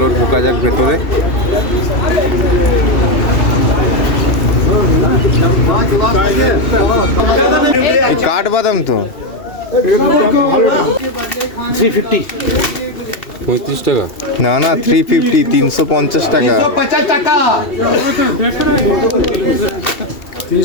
ঢোকা যাক ভেতরে। কাঠবাদাম তো 350 35 টাকা না না 350 350 টাকা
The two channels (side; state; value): right; late; 2.7 ms